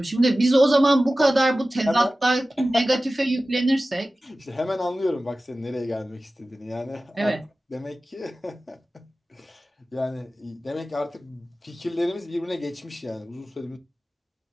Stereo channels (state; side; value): normal; both; correlation 0.96